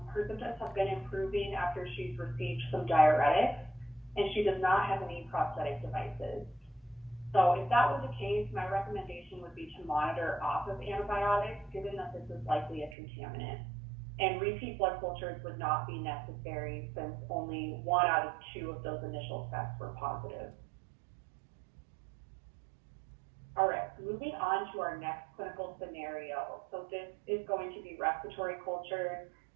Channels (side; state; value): left; drops out; at 13.0 s